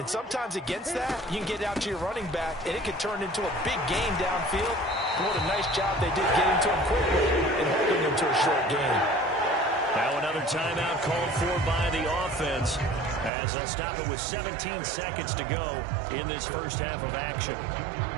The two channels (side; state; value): left; drops out; at 13.3 s